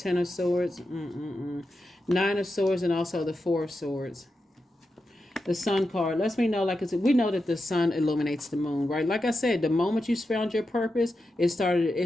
of Swords, Nine of Swords, and also the Four of Swords. The Sun card lets me know, like I said, we know that the sun illuminates the moon, right? Like I said, the moment you found your purpose, it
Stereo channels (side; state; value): both; normal; correlation 0.89